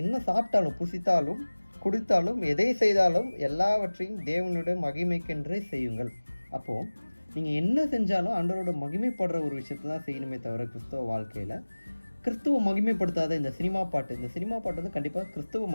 என்ன சாப்பிட்டாலும், புசித்தாலும், குடித்தாலும், எதை செய்தாலும் எல்லாவற்றையும் தேவனுடைய மகிமைக்கென்றே செய்யுங்கள். அப்போது நீங்கள் என்ன செஞ்சாலும் ஆண்டவரோட மகிமைப்படுற ஒரு விஷயத்தை தான் செய்யணுமே தவிர, கிறிஸ்தவ வாழ்க்கையில் கிறிஸ்துவ மகிமைப்படுத்தாத இந்த சினிமா பாட்டு கண்டிப்பாக கிறிஸ்துவ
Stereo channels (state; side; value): inverted; both; correlation -1.00